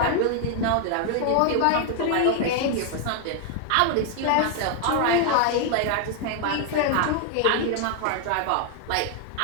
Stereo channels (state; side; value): different; both; correlation 0.00